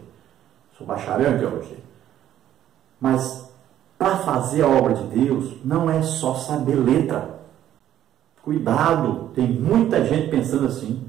sou bacharel em teologia, mas para fazer a obra de Deus não é só saber letra. Cuidado, tem muita gente pensando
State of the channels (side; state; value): left; quieter; 11.7 dB